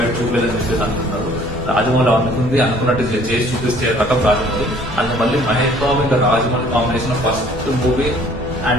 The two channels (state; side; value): noise; left; rumble, 13 dB below the sound